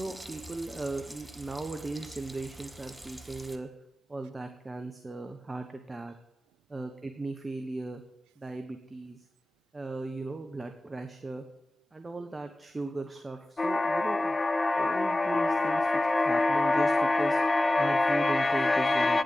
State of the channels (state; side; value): normal; both; correlation 0.96